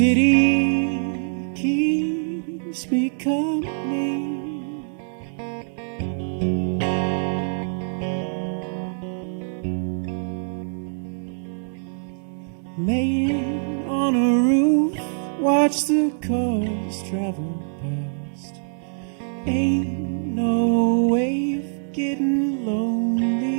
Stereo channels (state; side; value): silent; left; digital silence